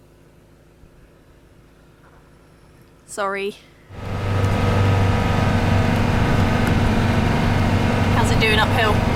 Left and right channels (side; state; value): both; identical; correlation 1.00